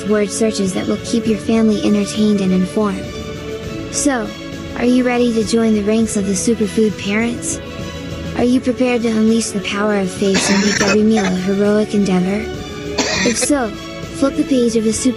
word searches that will keep your family entertained and informed. So, are you ready to join the ranks of the superfood parents? Are you prepared to unleash the power of faith and make every meal a heroic endeavor? If so, flip the page of the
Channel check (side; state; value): both; identical; correlation 1.00